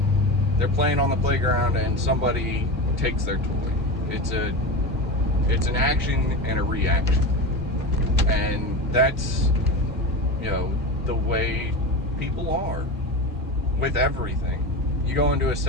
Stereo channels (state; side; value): normal; both; correlation 0.24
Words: they're playing on the playground and somebody takes their toy. It's an action and a reaction. And that's, the way people are with everything. You go into a